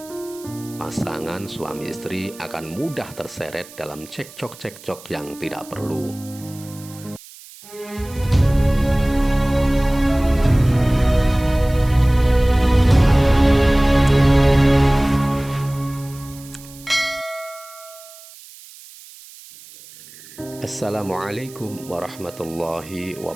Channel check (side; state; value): right; noise; hiss, 20 dB below the sound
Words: pasangan suami istri akan mudah terseret dalam cekcok-cekcok yang tidak perlu. Assalamualaikum warahmatullahi